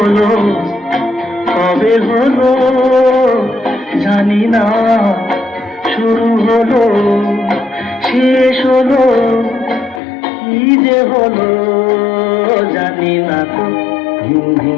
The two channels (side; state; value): right; drops out; at 10.0 s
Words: কবে হলো জানি না, শুরু হলো শেষ হলো, কি যে হলো জানি না তো।